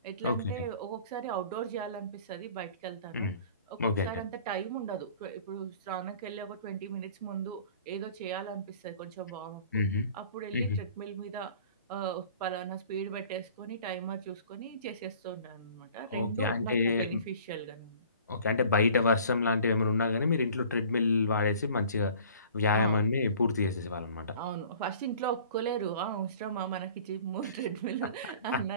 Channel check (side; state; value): both; inverted; correlation -0.49